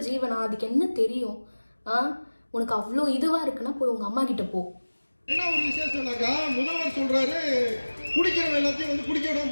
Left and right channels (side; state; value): both; inverted; correlation -1.00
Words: ஜீவனா, அதுக்கு என்ன தெரியும்? உனக்கு அவ்வளோ இதுவா இருக்குன்னா போய் உங்க அம்மா கிட்ட போ. என்ன ஒரு விசேஷம்னாக்கா முதல்வர் சொல்றாரு குடிக்கிறவன் எல்லாத்தையும் வந்து குடிக்க விடாம